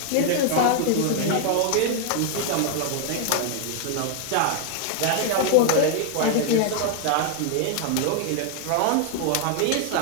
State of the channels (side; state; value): both; different; correlation 0.00